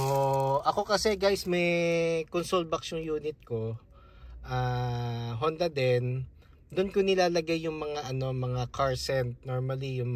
ako kasi guys, may console box yung unit ko, Honda din. Doon ko nilalagay yung mga mga car scent, normally yung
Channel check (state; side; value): identical; both; correlation 1.00